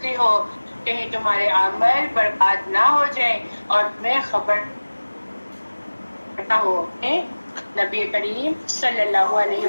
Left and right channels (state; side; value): inverted; both; correlation -1.00